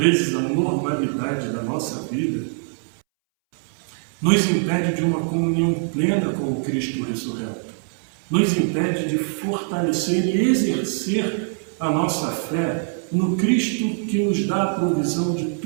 a normalidade da nossa vida nos impede de uma comunhão plena com o Cristo ressurreto, nos impede de fortalecer e exercer a nossa fé no Cristo que nos dá a provisão de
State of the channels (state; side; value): silent; left; 63 dB below the other